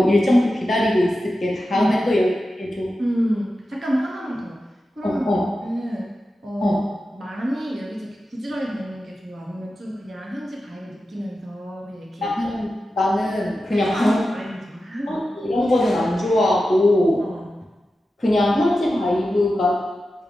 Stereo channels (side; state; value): both; normal; correlation 0.92